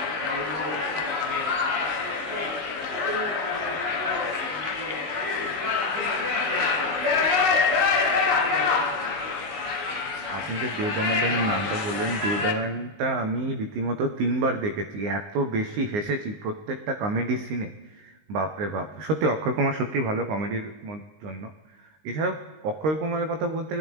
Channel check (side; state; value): left; late; 19 ms